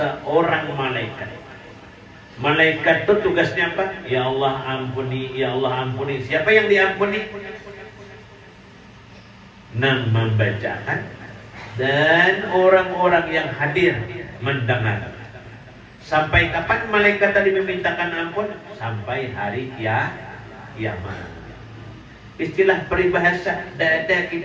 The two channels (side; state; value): both; identical; correlation 1.00